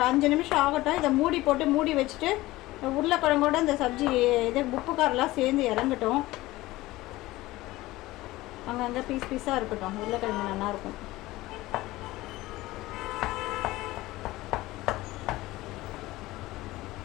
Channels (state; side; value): quieter; right; 18.3 dB